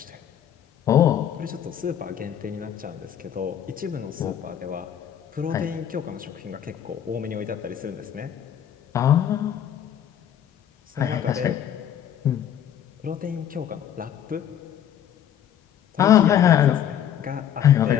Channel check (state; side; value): quieter; right; 9.9 dB